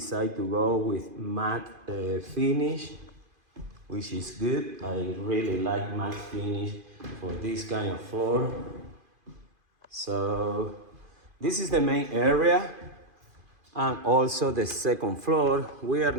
to go with matte finish, which is good. I really like matte finish for this kind of floor. So this is the main area and also the second floor. We are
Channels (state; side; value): late; left; 2.5 ms